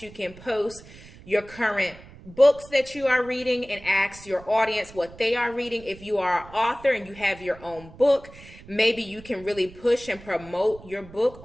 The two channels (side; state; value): right; noise; rumble, 19 dB below the sound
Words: you can post your current books that you are reading and ask your audience what they are reading. If you are an author and you have your own book, maybe you can really push and promote your book